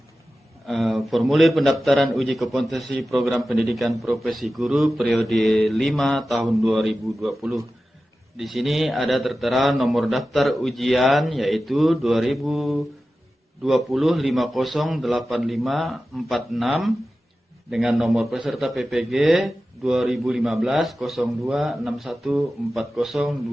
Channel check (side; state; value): both; normal; correlation 0.94